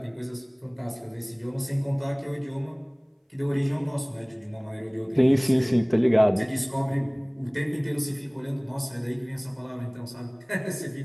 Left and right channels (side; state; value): both; identical; correlation 1.00